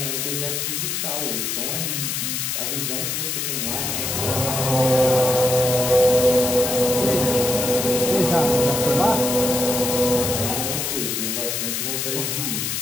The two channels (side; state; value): left; noise; hiss, 1 dB below the sound